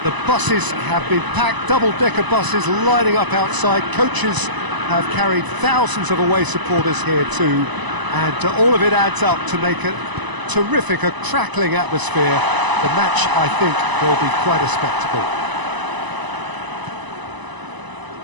buses have been packed, double-decker buses lining up outside. Coaches have carried thousands of away supporters here too, and all of it adds up to make a terrific, a crackling atmosphere. The match, I think, will be quite a spectacle.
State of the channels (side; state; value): left; late; 1.0 ms